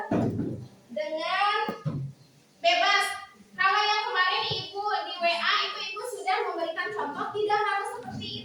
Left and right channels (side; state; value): both; identical; correlation 1.00